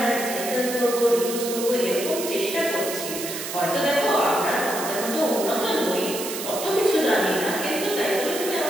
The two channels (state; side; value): noise; right; hiss, 7 dB below the sound